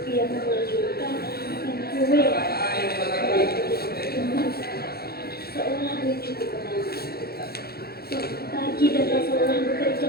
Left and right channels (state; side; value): late; right; 0.46 ms